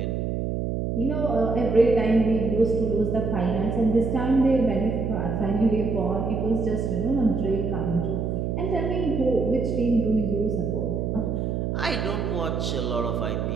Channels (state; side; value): noise; right; hum, 1 dB below the sound